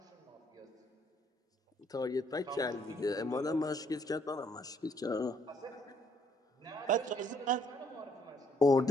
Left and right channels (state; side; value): normal; both; correlation 0.68